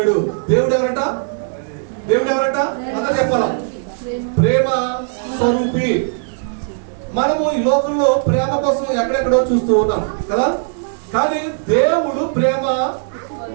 దేవుడు ఎవరట? దేవుడు ఎవరట? అందరూ చెప్పాలా? ప్రేమ స్వరూపి. మనము ఈ లోకంలో ప్రేమ కోసం ఎక్కడెక్కడో చూస్తూ ఉన్నాం కదా, కానీ దేవుడు ప్రేమ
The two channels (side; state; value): left; silent; 67 dB below the other